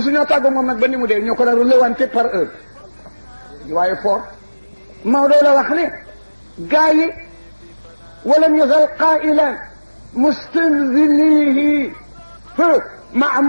tàggoo moom nag ba ni mu dee ñoo ko daal lewante par heure waaye fort Maodo la wax ne gaa yi ولم يزل قائلا مستنزليه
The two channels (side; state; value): both; inverted; correlation -1.00